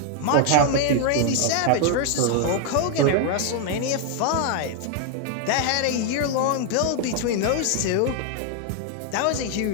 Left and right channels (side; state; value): both; different; correlation 0.00